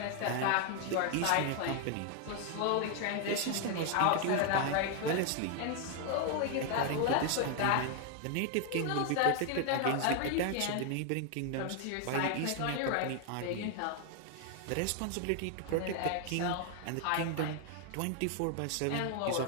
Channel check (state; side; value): different; both; correlation 0.00